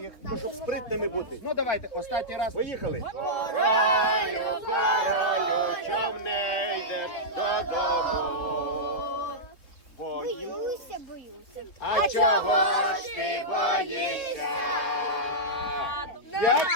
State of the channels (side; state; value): right; late; 4.3 ms